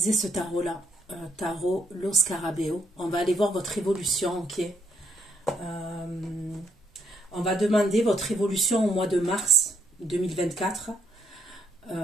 ce tarot-là, tarot Lo Scarabeo. On va aller voir votre évolution, ok? On va demander votre évolution au mois de mars 2024.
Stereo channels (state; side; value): normal; both; correlation 0.73